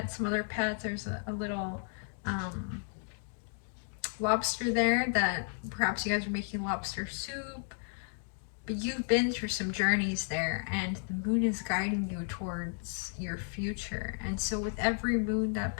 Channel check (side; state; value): right; silent; 56 dB below the other